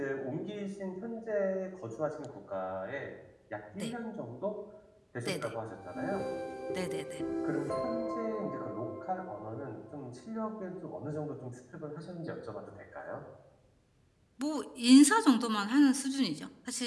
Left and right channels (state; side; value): identical; both; correlation 1.00